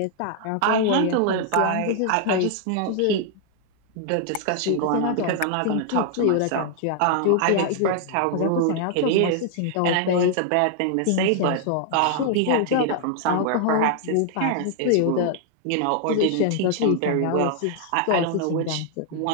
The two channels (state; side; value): different; both; correlation 0.00